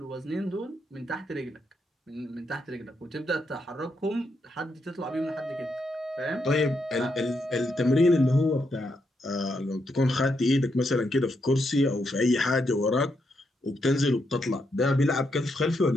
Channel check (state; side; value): normal; both; correlation 0.80